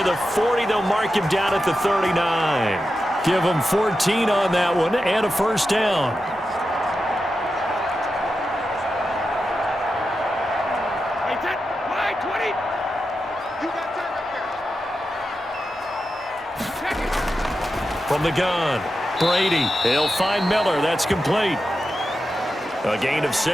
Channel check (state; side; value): normal; both; correlation 0.90